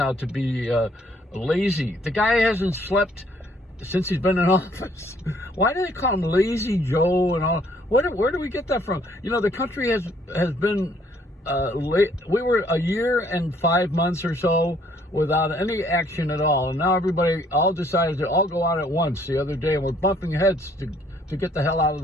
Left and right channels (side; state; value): both; normal; correlation 0.64